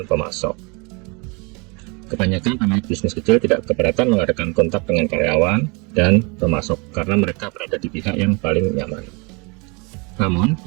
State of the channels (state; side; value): quieter; left; 30.2 dB